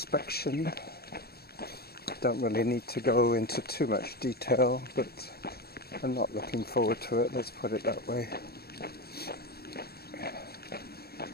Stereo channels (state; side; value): late; right; 0.46 ms